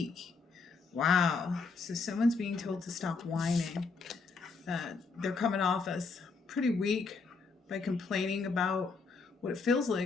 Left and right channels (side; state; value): right; quieter; 4.4 dB